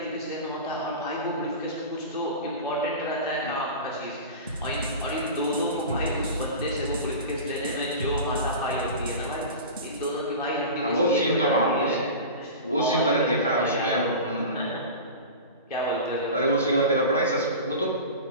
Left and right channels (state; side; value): inverted; both; correlation -0.31